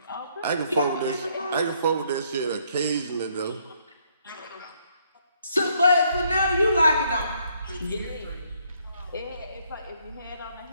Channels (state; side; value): inverted; both; correlation -0.70